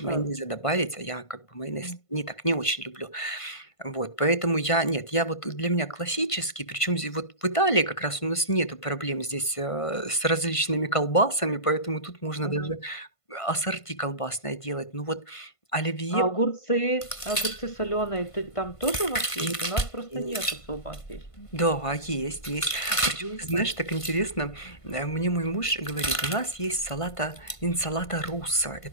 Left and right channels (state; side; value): late; right; 1.5 ms